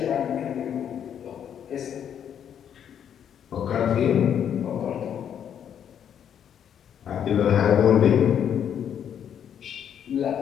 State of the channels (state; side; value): quieter; right; 8.9 dB